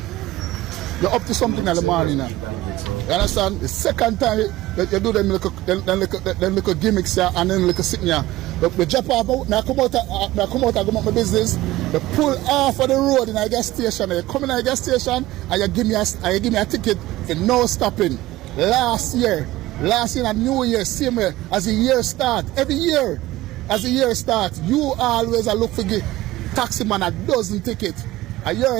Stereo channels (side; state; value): left; quieter; 17.1 dB